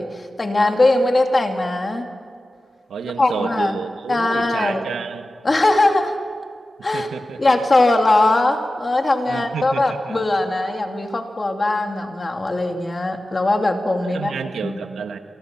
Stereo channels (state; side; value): normal; both; correlation 0.95